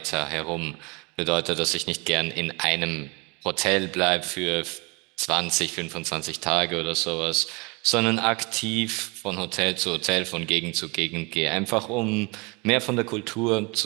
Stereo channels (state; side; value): quieter; left; 27.7 dB